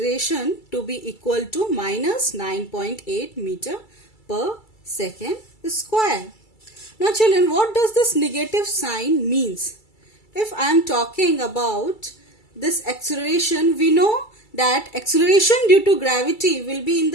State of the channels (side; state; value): right; late; 2.3 ms